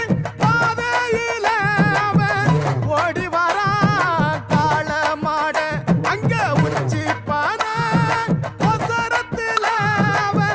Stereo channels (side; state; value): both; identical; correlation 1.00